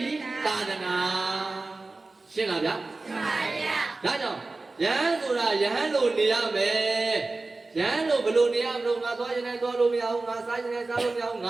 ိသာသနာရှင်းလားဗျာရှင်းပါဗျာဒါကြောင့်ယဟန်ဆိုတာယဟန်လိုနေရမယ်ယဟန်လိုဘယ်လိုနေရမလို့ငါသွားရင်လည်းသွားလို့မရဘူးငါစားရင်လည်းစားလို့မရဘူးင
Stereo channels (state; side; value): quieter; left; 3.4 dB